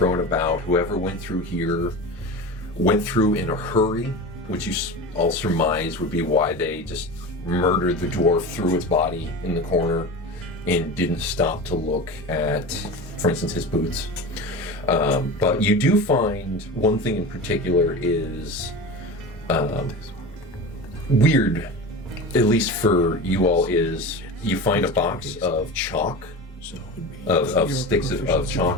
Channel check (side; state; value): both; normal; correlation 0.29